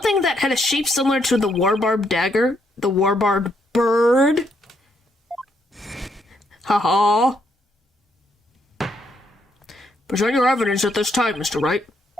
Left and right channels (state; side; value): normal; both; correlation 0.74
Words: that had a shape similar to the warbarb dagger? The warbarb bird? Haha. Present your evidence at this time, Mr. Wright.